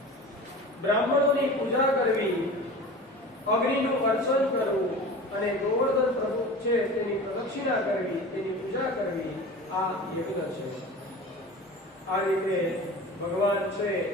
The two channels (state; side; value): normal; both; correlation 0.36